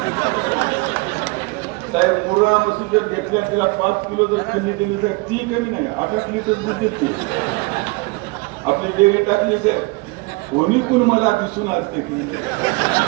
साहेब, मुर्रा म्हशी जर घेतल्या तिला 5 किलो जर खंडी दिली तर ती कमी नाही 8 लिटर दूध देते. आपली डेअरी टाकली साहेब, कोणी कोण मला दिसून असते की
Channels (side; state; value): left; quieter; 26.5 dB